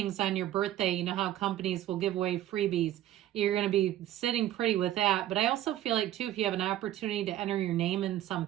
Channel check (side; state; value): left; quieter; 13.0 dB